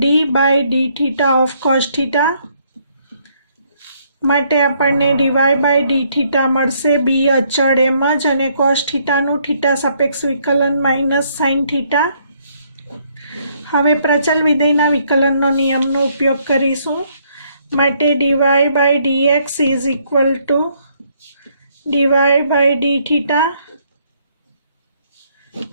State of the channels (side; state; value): both; inverted; correlation -0.69